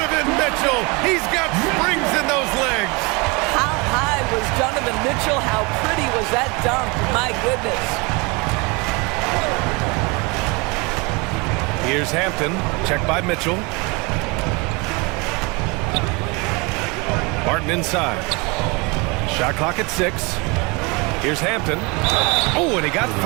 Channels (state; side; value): quieter; left; 28.0 dB